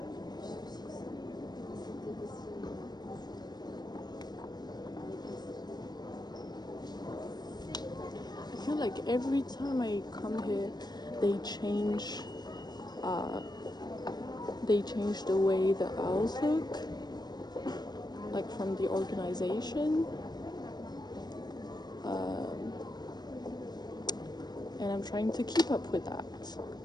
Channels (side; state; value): right; late; 0.20 ms